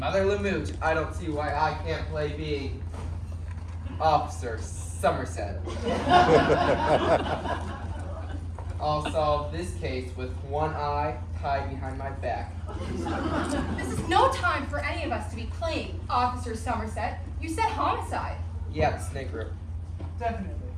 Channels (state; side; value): identical; both; correlation 1.00